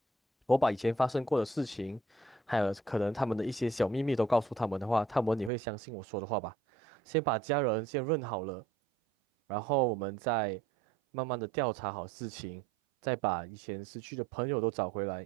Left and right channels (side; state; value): left; drops out; at 5.5 s